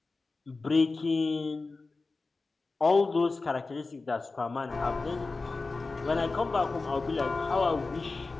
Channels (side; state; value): right; quieter; 3.7 dB